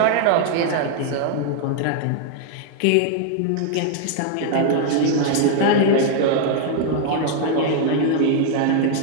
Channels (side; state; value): both; different; correlation 0.00